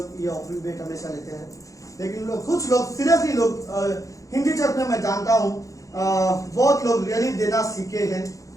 ये ऑफरिंग भेंट हमेशा लेते हैं। लेकिन कुछ लोग सीरियसली लोग हिंदी चर्च में मैं जानता हूँ बहुत लोग रियली देना सीखे हैं,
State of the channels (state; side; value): late; right; 0.16 ms